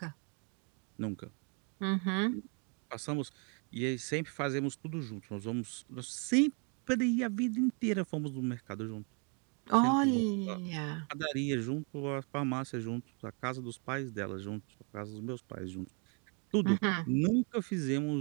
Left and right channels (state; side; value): quieter; left; 36.8 dB